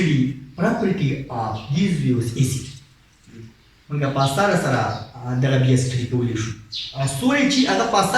property of these waves AC. موږ په اسانه سره دغه بیا سټډي کولی شو سوری چې هغه په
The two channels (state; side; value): identical; both; correlation 1.00